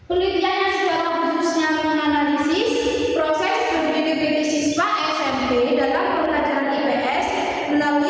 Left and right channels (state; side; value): identical; both; correlation 1.00